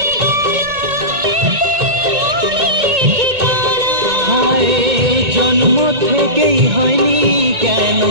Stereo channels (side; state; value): left; late; 1.9 ms